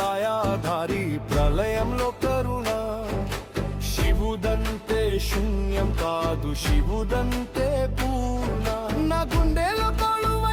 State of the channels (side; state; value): both; identical; correlation 1.00